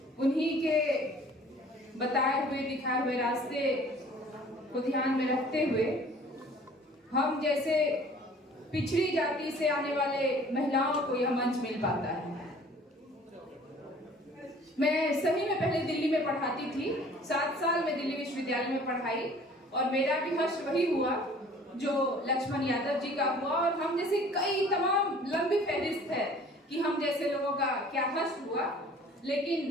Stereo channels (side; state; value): both; normal; correlation 0.51